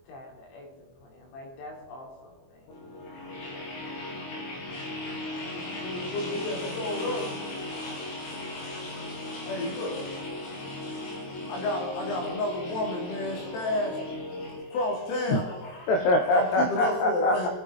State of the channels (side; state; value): right; late; 23 ms